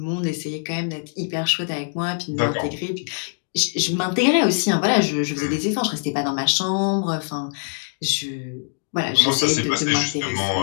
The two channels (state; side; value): silent; right; digital silence